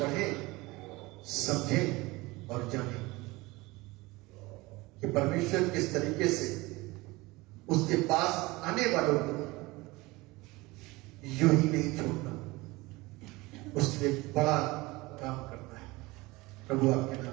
समझें और जानें कि परमेश्वर किस तरीके से उसके पास आने वालों को यूं ही नहीं छोड़ता, उसके लिए बड़ा काम करता है। प्रभु आपके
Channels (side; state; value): left; quieter; 21.9 dB